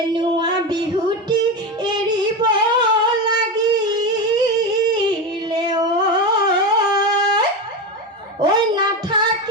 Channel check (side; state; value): both; normal; correlation 0.18